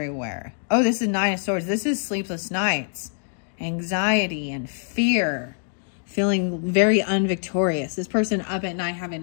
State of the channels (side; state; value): right; silent; digital silence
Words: Oh, this is 9 of Swords. This is sleepless nights, anxiety and fear. Feeling very unvictorious. This person up at night